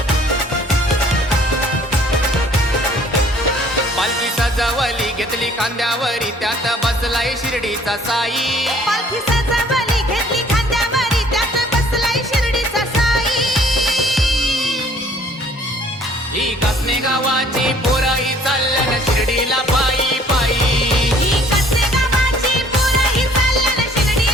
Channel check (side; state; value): both; normal; correlation 0.57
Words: पालखी सजवली घेतली खांद्यावरी त्यात बसलाय शिर्डीचा साई। पालखी सजवली घेतली खांद्यावरी त्यात बसलाय शिर्डीचा साई। ही कासने गावाची पोरही चालल्यान शिर्डीला पायी पायी। ही कासने गावाची पोरही चालल्यान